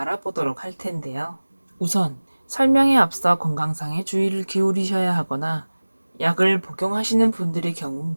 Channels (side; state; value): both; inverted; correlation -1.00